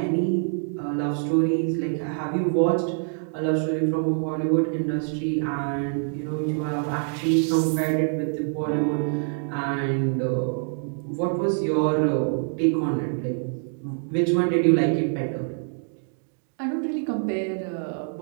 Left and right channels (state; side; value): silent; left; 61 dB below the other